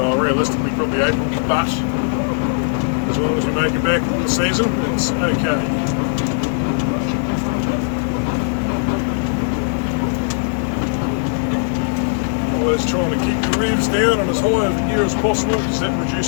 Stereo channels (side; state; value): right; silent; digital silence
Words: realistically probably April, but as long as we make it back in the season, it's okay. Always trying to keep your revs down and as high of a gear as possible because that